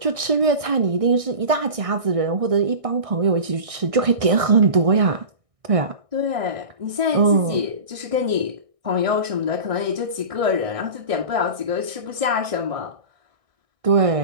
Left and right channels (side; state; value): left; late; 1.6 ms